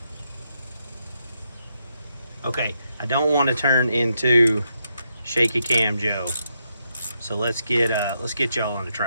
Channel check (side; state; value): both; inverted; correlation -0.81